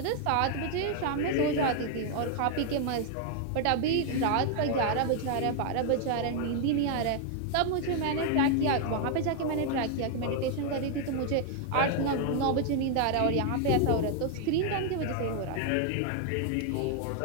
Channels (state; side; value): different; both; correlation 0.00